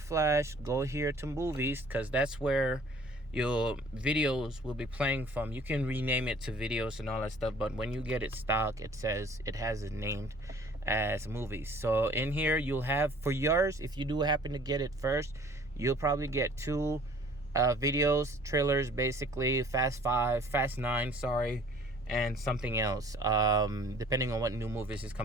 go here to movies, because that's where your videos will be playing from. You can rename it to videos and all that stuff, but when you get it stock, it says it has it named as movies. So in here you'll have, for yours, if you do happen to get it first, you'll probably get 2 videos, trailers, basically Fast 5, Fast 9, sorry, and something else, depending on what new movies is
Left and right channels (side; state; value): both; normal; correlation 0.53